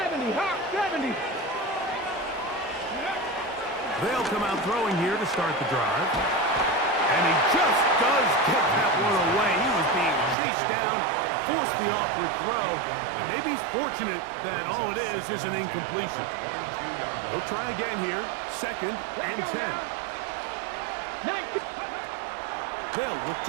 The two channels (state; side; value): drops out; left; at 10.4 s